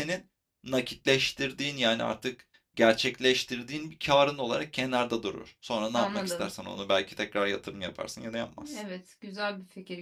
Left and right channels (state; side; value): identical; both; correlation 1.00